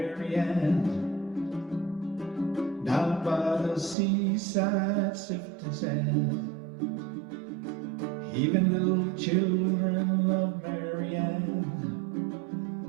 down by the seaside sifting sand. Even little children love Marianne,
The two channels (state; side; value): drops out; left; at 4.0 s